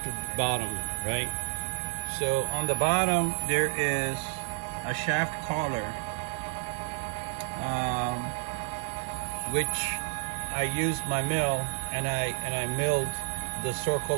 bottom, right? So on the bottom there is a shaft collar, which I used my mill and I milled the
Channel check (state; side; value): silent; left; 58 dB below the other